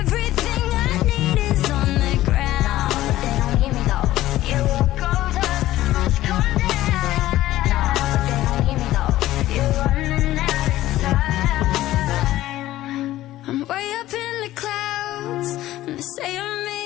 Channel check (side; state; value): right; quieter; 15.1 dB